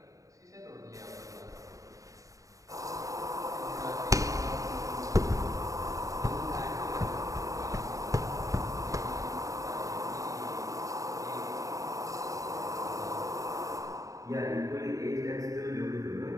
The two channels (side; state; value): left; late; 0.16 ms